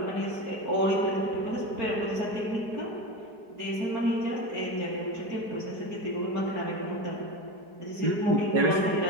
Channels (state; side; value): late; left; 4.7 ms